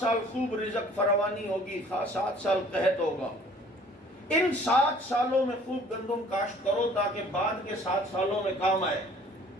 خوب رزق فراوانی ہوگی, 7 سال قحط ہوگا. ان 7 سالوں میں خوب گندم کاشت کرو تاکہ بعد کے 7 سالوں میں کام آئے.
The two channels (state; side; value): normal; both; correlation 0.54